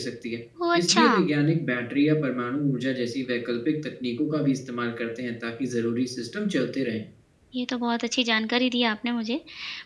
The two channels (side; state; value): both; identical; correlation 1.00